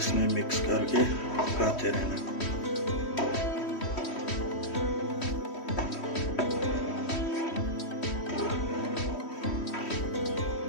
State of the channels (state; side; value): late; right; 3.1 ms